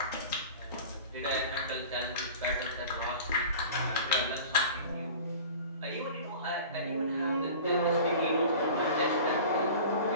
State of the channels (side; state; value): both; inverted; correlation -0.40